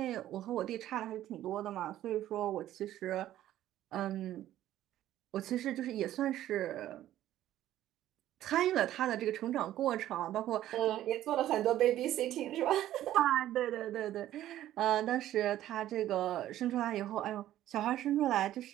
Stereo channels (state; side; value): quieter; left; 13.1 dB